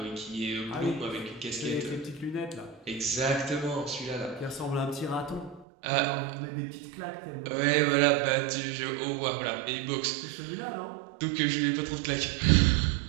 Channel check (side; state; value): left; drops out; at 5.7 s